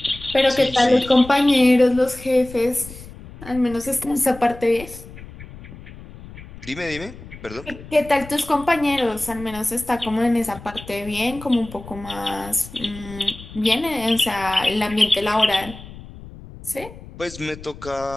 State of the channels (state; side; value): noise; left; rumble, 16 dB below the sound